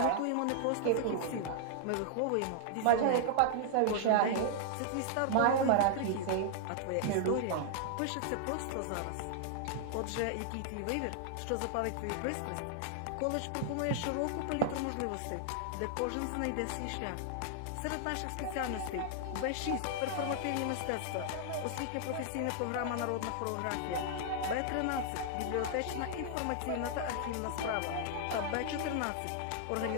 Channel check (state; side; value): different; both; correlation -0.01